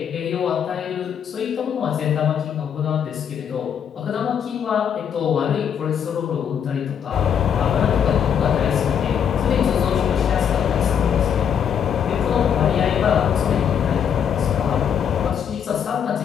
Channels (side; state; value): right; quieter; 8.1 dB